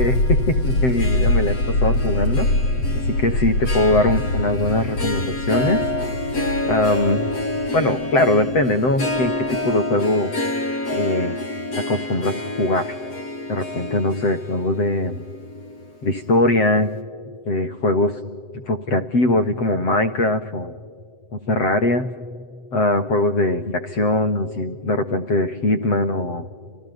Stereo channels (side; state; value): right; late; 7.8 ms